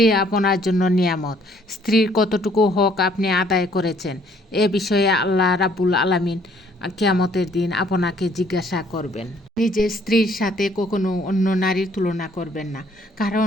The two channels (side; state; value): both; normal; correlation 0.62